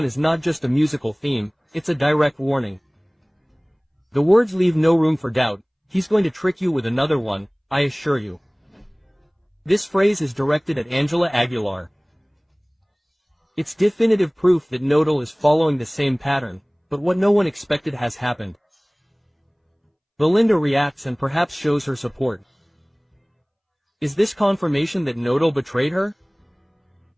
is not just a musical theme, it's a direct warning. The words leave no room for doubt. He's going to trick you with another one, I assure you. This phrase is directed at Ángela Aguilar. It's definitive proof that Nodal is following the same pattern, but what no one expected has happened. Belinda reacts and perhaps shows her support. Is this confirmation that Nodal betrayed her?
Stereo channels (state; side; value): identical; both; correlation 1.00